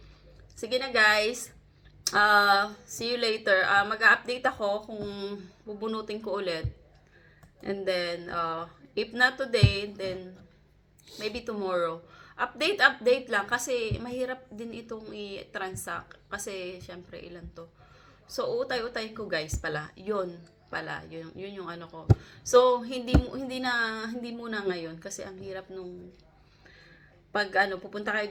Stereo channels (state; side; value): identical; both; correlation 1.00